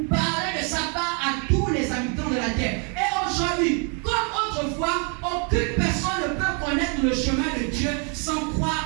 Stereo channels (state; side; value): quieter; left; 37.1 dB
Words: parler de sa part à tous les habitants de la terre. Et aujourd'hui, comme autrefois, aucune personne ne peut connaître le chemin de Dieu sans